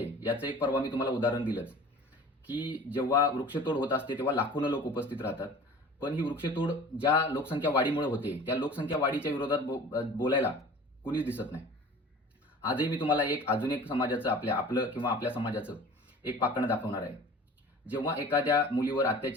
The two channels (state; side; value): normal; both; correlation 0.42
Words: याचं एक परवा मी तुम्हाला उदाहरण दिलंच की जेव्हा वृक्षतोड होत असते तेव्हा लाखोनं लोक उपस्थित राहतात. पण ही वृक्षतोड ज्या लोकसंख्या वाढीमुळे होते त्या लोकसंख्या वाढीच्या विरोधात बोलायला कुणीच दिसत नाही. आजही मी तुम्हाला अजून एक समाजाचं आपलं किंवा आपल्या समाजाचं एक पाखंड दाखवणार आहे. जेव्हा एखाद्या मुलीवर